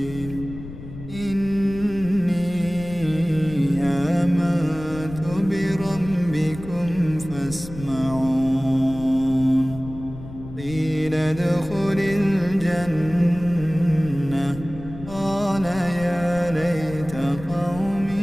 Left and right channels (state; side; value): noise; left; rumble, 13 dB below the sound